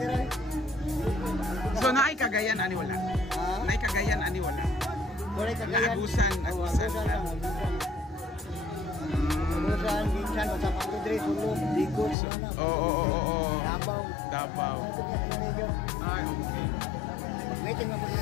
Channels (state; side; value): drops out; right; at 12.2 s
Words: So naay Cagayan ani wala? Naay Cagayan ani wala? Agusan. Agusan, Ginsan, sa Pagdre, Sulong, Digos, Davao. Ay, okay.